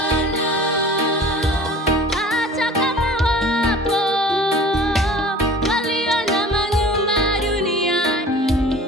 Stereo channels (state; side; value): normal; both; correlation 0.43